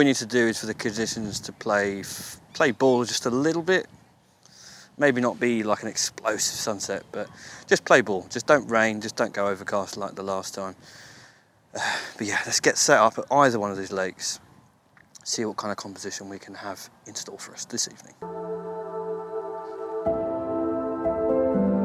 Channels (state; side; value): identical; both; correlation 1.00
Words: need to do is for the conditions to play ball just a little bit. Maybe not be like an explosive sunset, but just play ball. Just don't rain, just don't go overcast like the last time. But yeah, let's get set up at either one of these lakes. See what kind of composition we can have in store for us this evening.